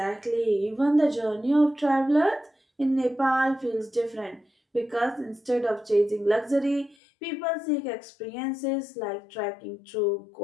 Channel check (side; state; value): right; drops out; at 7.0 s